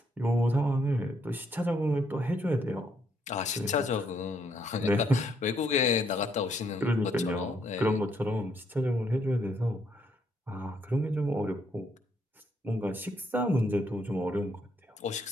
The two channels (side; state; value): both; normal; correlation 0.72